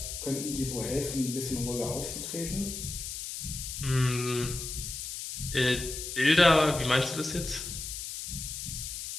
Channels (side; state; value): left; noise; hiss, 6 dB below the sound